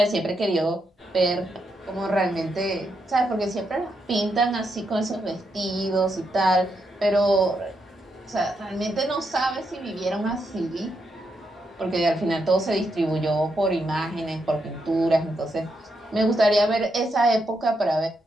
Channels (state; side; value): normal; both; correlation 0.81